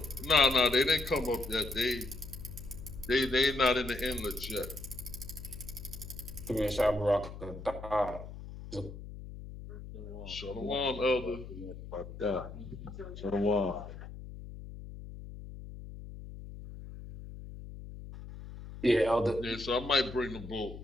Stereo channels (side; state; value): left; noise; hum, 12 dB below the sound